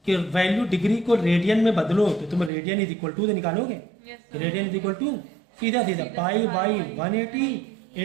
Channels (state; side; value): drops out; left; at 2.5 s